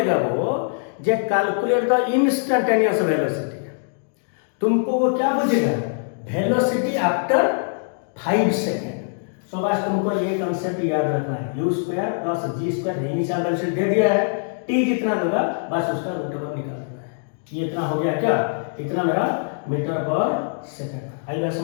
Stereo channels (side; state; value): right; silent; digital silence